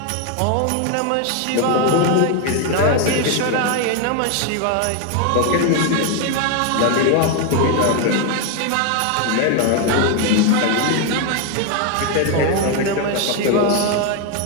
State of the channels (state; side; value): different; both; correlation 0.01